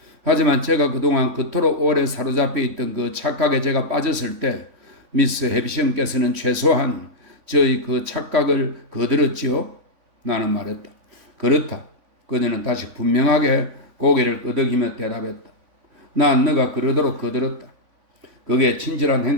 하지만 제가 그동안 그토록 오래 사로잡혀 있던 그 착각에 제가 빠졌을 때 미스 해비션께서는 최소한 저의 그 착각을 거들었지요? 나는 말했다. 그렇다. 그녀는 다시 분명하게 고개를 끄덕이며 대답했다. 난 너가 그러도록 거들었다. 그게 친절한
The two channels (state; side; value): late; left; 3.5 ms